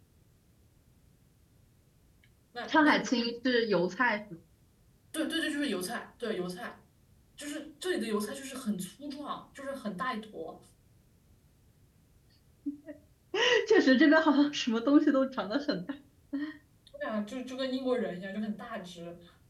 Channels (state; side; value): identical; both; correlation 1.00